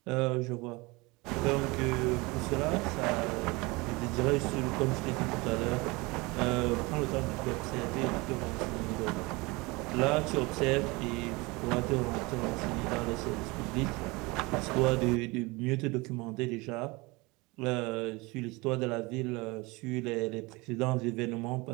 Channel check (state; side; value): quieter; left; 24.6 dB